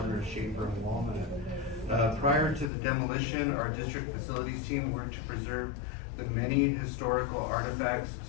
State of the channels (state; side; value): drops out; right; at 2.7 s